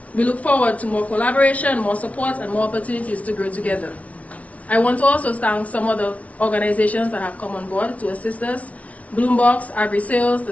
We look forward to more collaboration, more support, and more opportunities to grow together. I want to also thank some other organizations that have come on board to assist us: Bloombox, Agri Sales, The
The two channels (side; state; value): right; late; 0.066 ms